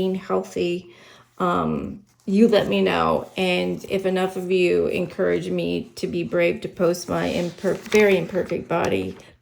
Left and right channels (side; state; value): both; identical; correlation 1.00